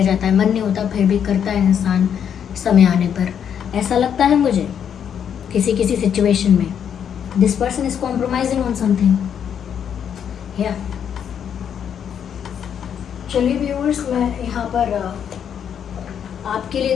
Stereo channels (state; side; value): quieter; right; 8.4 dB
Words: जाता है, मन नहीं होता फिर भी करता है इंसान समय आने पर, ऐसा लगता है मुझे किसी किसी सिचुएशन में। This person is compromising on something. या चलिए व्यूअर्स, मैं यहाँ पर आपके लिए